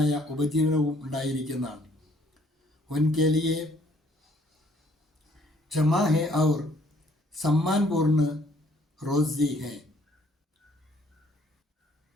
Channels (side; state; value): both; normal; correlation 0.63